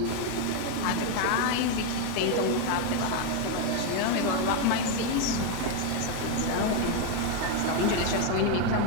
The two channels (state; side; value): different; both; correlation 0.01